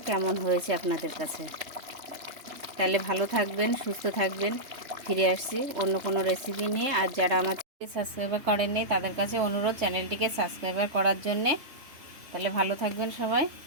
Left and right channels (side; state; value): left; late; 3.3 ms